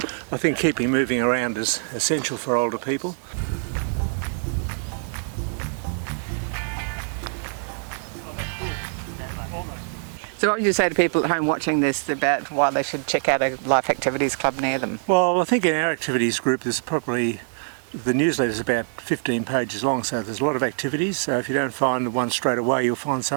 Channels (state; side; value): silent; left; digital silence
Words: think keeping moving around is essential for older people. So what would you say to people at home watching this about why they should check out a Life Activities Club near them? Well, I think in our activities group there's probably, the newsletter is about 15 pages long, so there's a lot of activities. So if you don't find the one straight away, you'll find